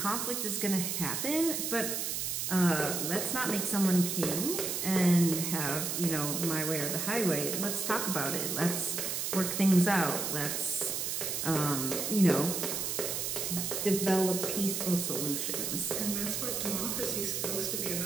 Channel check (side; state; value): right; noise; hiss, 1 dB below the sound